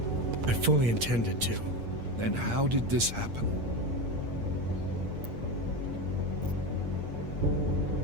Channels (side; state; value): left; late; 8.6 ms